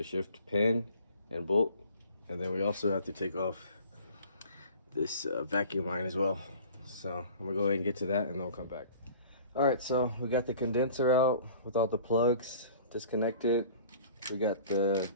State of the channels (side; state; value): both; inverted; correlation -0.47